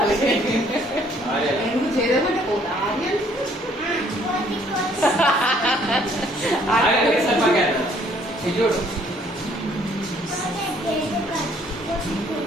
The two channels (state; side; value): normal; both; correlation 0.62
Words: ఎందుకు చేదమంటే చూడు